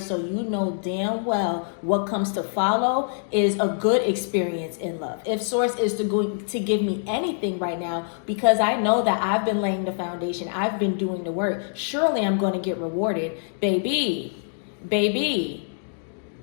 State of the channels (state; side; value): silent; right; digital silence